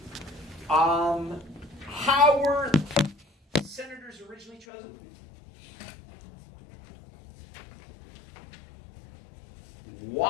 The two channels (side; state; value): right; drops out; at 4.7 s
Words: How were senators originally chosen?